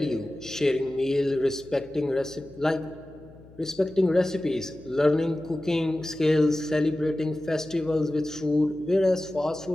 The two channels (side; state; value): left; noise; hum, 22 dB below the sound